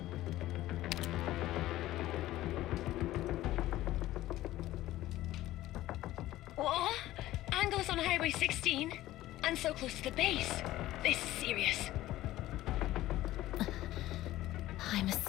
What? Angle's on Highway 16? And so close to the base. This is serious. I'm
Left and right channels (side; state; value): right; quieter; 15.4 dB